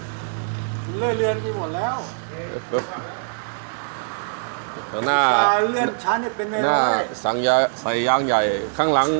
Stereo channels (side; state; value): left; silent; digital silence